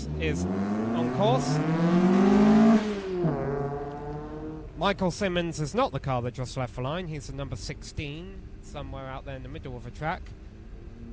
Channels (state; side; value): identical; both; correlation 1.00